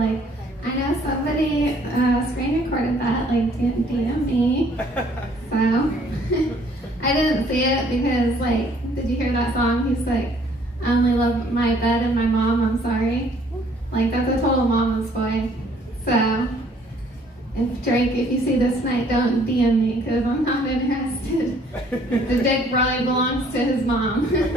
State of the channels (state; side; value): normal; both; correlation 0.60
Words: I know somebody screen recorded that, like didn't DM me. So I didn't see it because, like, did you hear that song? He's like, I only love my bed and my mom, I'm sorry. Like, that's a total mama's boy. So, if Drake, if you see this tonight, don't DM me because I'm not interested. The dick probably belongs to his mom.